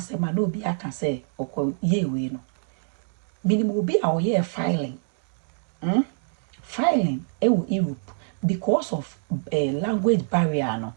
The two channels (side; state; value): left; silent; digital silence